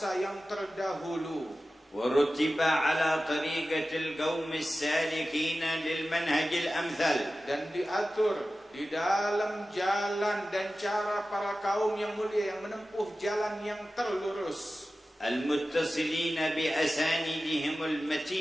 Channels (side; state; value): both; normal; correlation 0.95